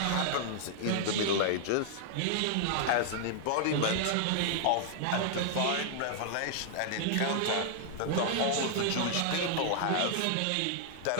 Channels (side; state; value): both; different; correlation -0.01